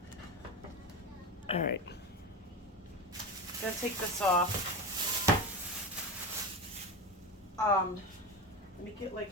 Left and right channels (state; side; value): noise; left; hum, 27 dB below the sound